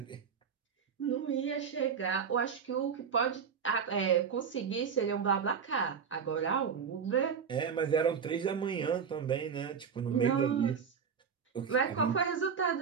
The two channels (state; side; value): quieter; left; 6.8 dB